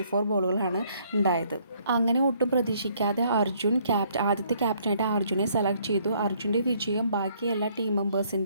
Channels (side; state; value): both; inverted; correlation -0.65